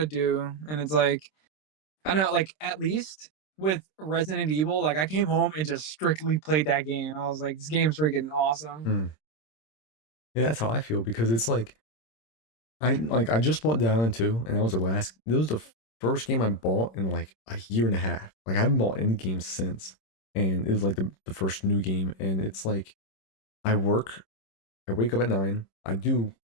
do, and it's like I know, like at least with Resident Evil, like I came home and just strictly played that game. I was like, this game's freaking awesome. Mm. Yeah, that's how I feel because it's like I just bought Dead Island 2 and that was the first game I bought in like a year and a half. Like I haven't bought any games since. And it was like the first new game. And it's like I wake up at 9, I do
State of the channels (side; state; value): right; late; 26 ms